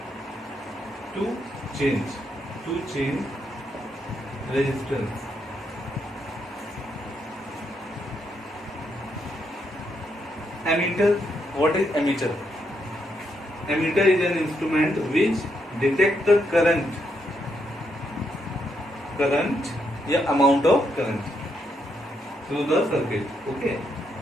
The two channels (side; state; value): both; normal; correlation 0.78